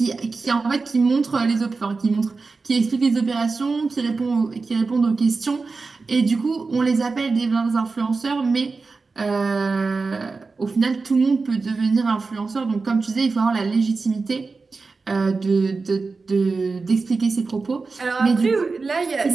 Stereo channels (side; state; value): left; quieter; 4.2 dB